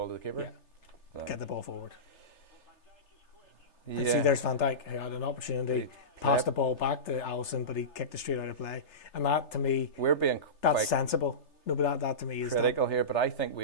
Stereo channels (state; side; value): late; right; 3.3 ms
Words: to the keeper? Yeah. Get the ball forward. Yeah. And see, there's Van Dijk who had an opportunity, passed the ball back to Alisson, but he kicked it straight out of play. And that, to me, that's sensible. No, but that to me is critical here. But I think we